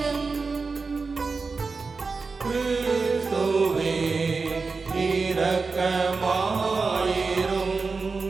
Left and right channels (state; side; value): quieter; left; 4.4 dB